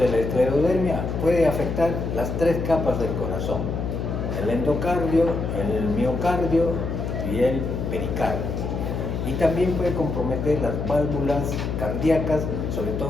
la esclerodermia puede afectar las 3 capas del corazón. el endocardio, el miocardio y el pericardio. Y también puede comprometer las válvulas cardíacas, sobre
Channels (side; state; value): left; noise; hum, 3 dB below the sound